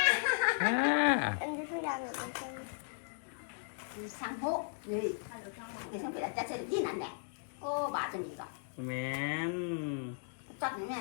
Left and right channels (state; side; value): silent; right; digital silence